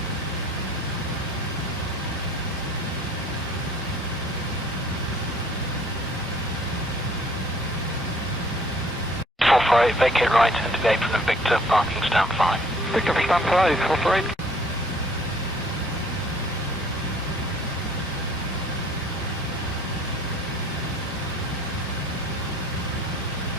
Vacate right, into the apron of Victor, parking stand 5. Victor, stand 5, operate.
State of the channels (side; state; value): both; normal; correlation 0.57